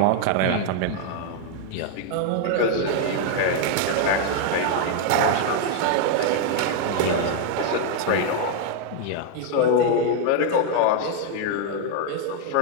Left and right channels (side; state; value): both; different; correlation 0.00